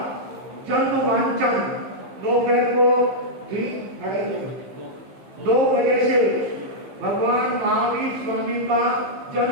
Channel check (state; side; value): late; left; 15 ms